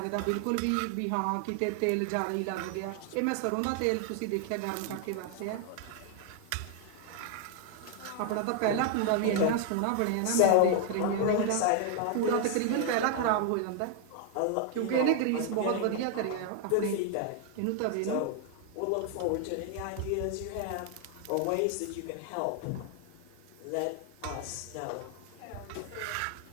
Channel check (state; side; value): different; both; correlation 0.00